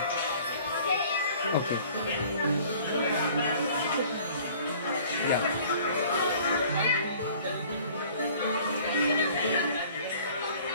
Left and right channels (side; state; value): both; inverted; correlation -0.51